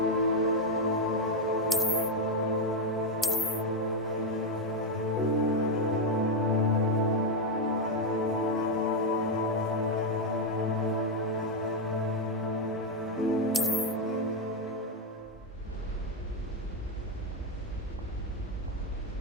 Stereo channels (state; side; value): normal; both; correlation 0.04